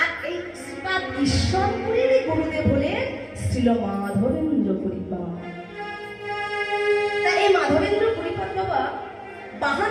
এই শ্রীপাদ ঈশ্বরপুরীর গুরুদেব হলেন শ্রীল মাধবেন্দ্র পরিপাদ। তাই এই মাধবেন্দ্র পরিপাদ বাবা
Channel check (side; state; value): both; identical; correlation 1.00